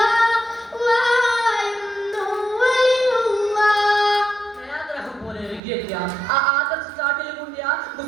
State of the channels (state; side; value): drops out; left; at 5.6 s